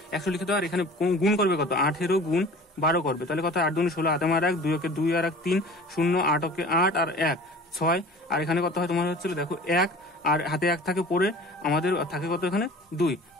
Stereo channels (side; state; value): both; normal; correlation 0.43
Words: 100 লিখে দেবে। আর এখানে গুণ করবে কত, 18 গুণ 12 করবে। তাহলে কত, 8 দুগুণে 16, 8 আর 1 2 2 আর 1 3 0 8 8 আর 1 6। আর এখানে কত হয় তোমার হচ্ছিল দেখো 1 আর হাতে 1 থাকে পরে আমাদের থাকে কত এখানে 2,